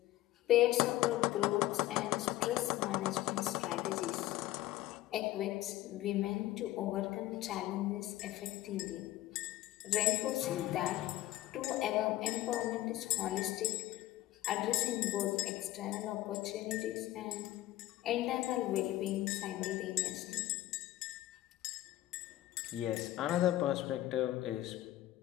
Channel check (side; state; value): right; quieter; 15.5 dB